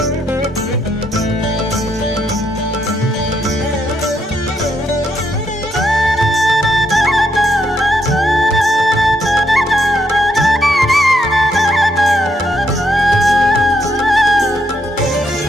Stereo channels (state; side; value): normal; both; correlation 0.77